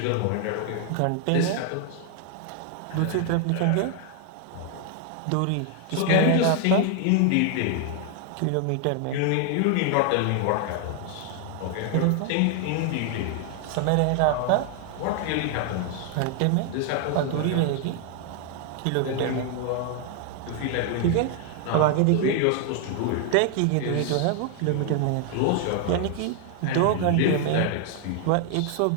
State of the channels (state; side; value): different; both; correlation 0.00